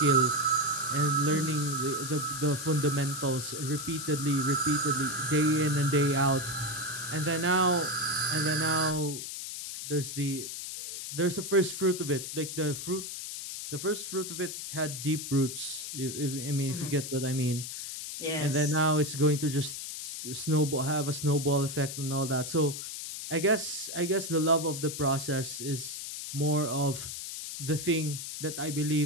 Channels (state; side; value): noise; left; hiss, 7 dB below the sound